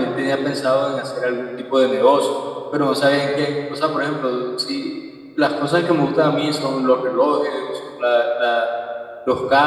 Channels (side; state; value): both; identical; correlation 1.00